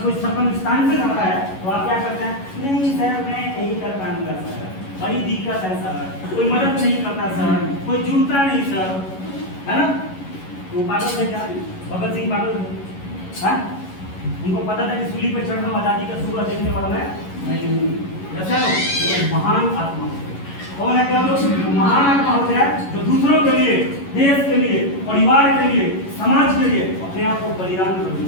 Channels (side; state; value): right; late; 11 ms